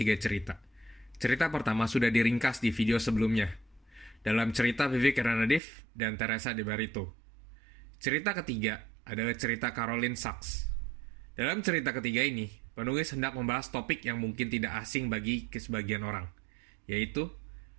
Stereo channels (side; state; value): left; drops out; at 5.6 s